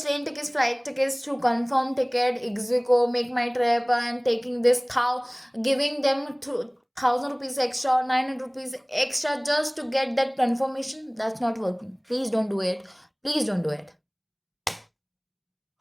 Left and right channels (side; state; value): both; identical; correlation 1.00